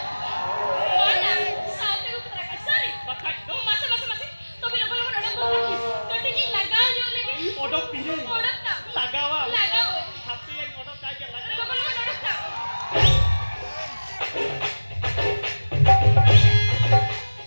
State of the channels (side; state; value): both; inverted; correlation -1.00